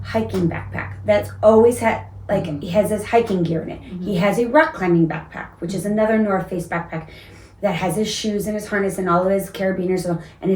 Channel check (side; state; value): both; identical; correlation 1.00